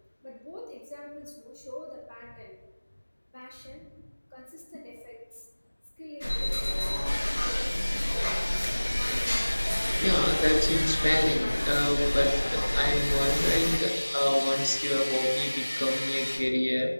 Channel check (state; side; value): inverted; both; correlation -1.00